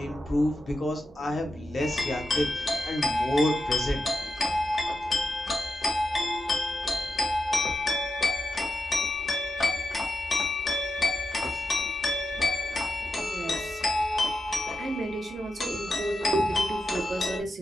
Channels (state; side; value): normal; both; correlation 0.88